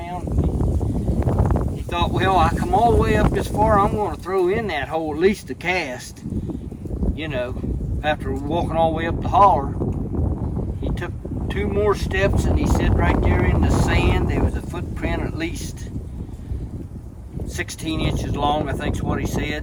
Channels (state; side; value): identical; both; correlation 1.00